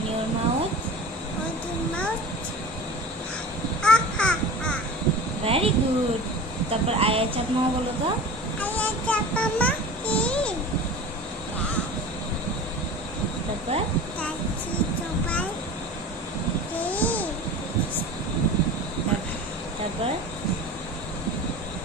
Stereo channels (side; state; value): both; normal; correlation 0.36